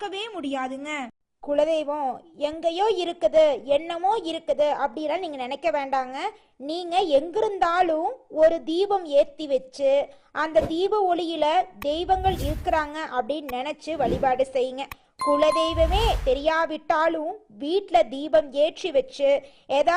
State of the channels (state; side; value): identical; both; correlation 1.00